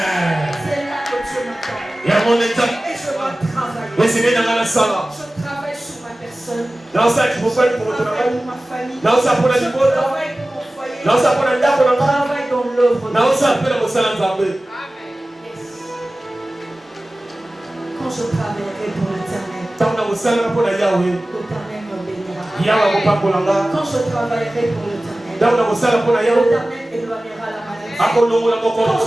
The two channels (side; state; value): both; normal; correlation 0.97